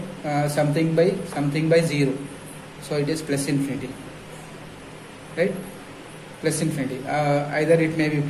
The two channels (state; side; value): identical; both; correlation 1.00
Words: Something by 0. So it is plus infinity. Right? Plus infinity. Either it may be